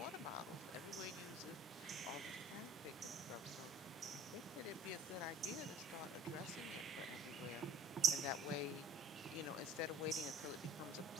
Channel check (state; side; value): normal; both; correlation 0.52